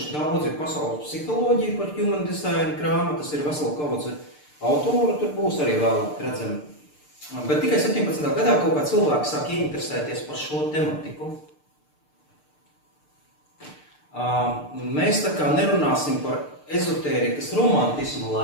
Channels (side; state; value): right; late; 6.7 ms